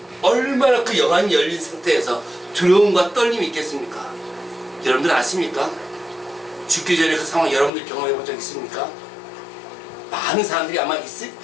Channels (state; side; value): drops out; right; at 7.7 s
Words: 얼마나 그 영안이 열린 상태에서 두려움과 떨림이 있겠습니까? 여러분들 아십니까? 죽기 전에 그 상황 여러분들 경험해 본 적 있습니까? 많은 사람들이 아마